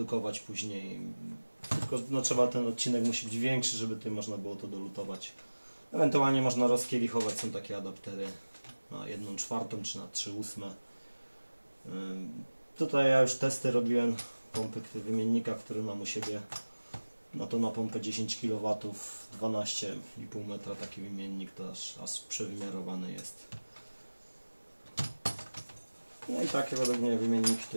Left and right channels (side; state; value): both; inverted; correlation -1.00